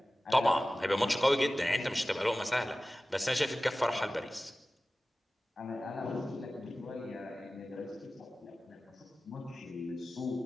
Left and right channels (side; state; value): both; normal; correlation 0.96